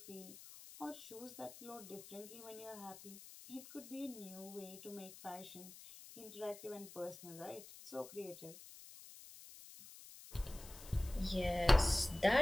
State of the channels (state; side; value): noise; left; hiss, 16 dB below the sound